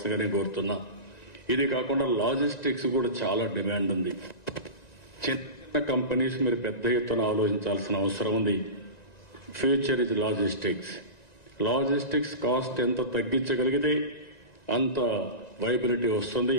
కోరుతున్నా. ఇది కాకుండా లాజిస్టిక్స్ కూడా చాలా డిమాండ్ ఉంది. చిన్న కంపెనీస్ మీరు పెద్ద ఎత్తున ఆలోచించాల్సిన అవసరం ఉంది. Future is logistics. Logistics cost ఎంత తగ్గించగలిగితే అంత వైబిలిటీ వస్తుంది.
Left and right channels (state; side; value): late; right; 1.9 ms